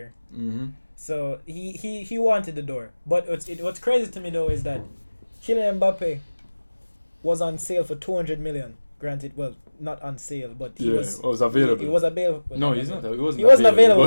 So he wanted the door. But what's crazy to me though is that Kylian Mbappe was on sale for 200 million. Granted, well, not on sale, but he was available. He was available. No, he's not. He wasn't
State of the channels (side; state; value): both; inverted; correlation -1.00